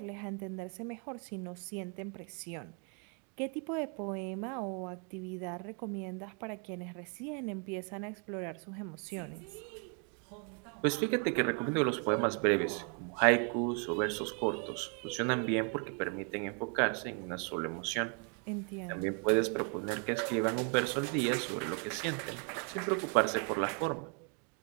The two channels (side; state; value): left; quieter; 38.5 dB